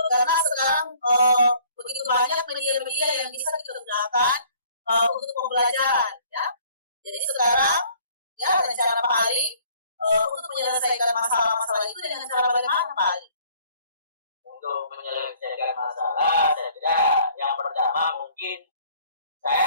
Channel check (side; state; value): both; inverted; correlation -0.57